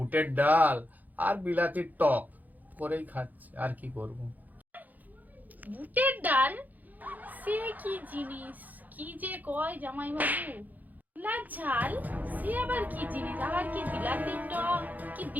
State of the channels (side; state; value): left; late; 0.082 ms